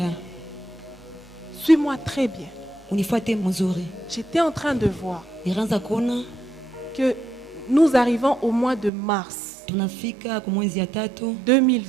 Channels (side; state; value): left; drops out; at 8.9 s